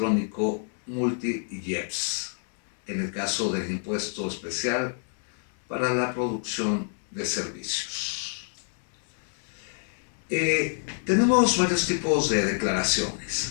multi-IEPS, en el caso del impuesto especial para la producción de servicios. Tenemos varios tipos de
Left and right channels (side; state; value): right; silent; digital silence